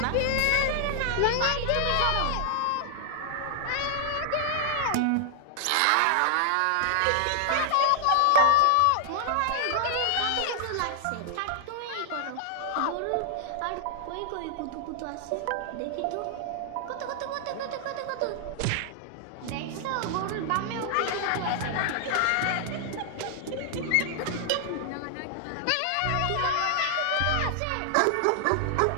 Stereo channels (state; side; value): different; both; correlation 0.00